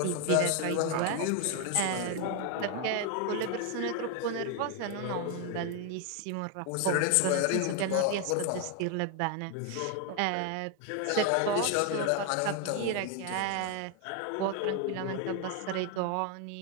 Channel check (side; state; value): both; different; correlation 0.01